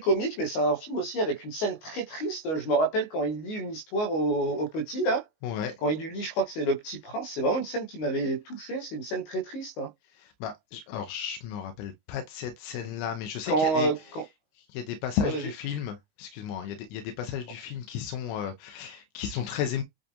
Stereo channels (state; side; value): late; right; 19 ms